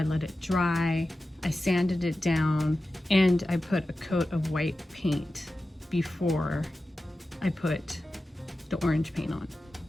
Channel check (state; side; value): normal; both; correlation 0.94